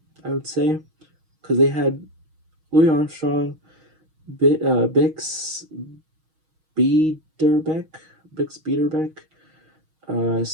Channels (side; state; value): left; late; 6.3 ms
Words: I would say, because they had Louis Armstrong, Bix Biederbeck,